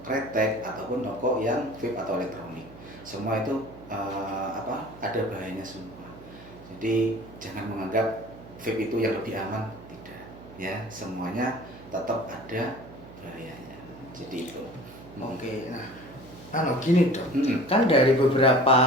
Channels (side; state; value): right; noise; hum, 18 dB below the sound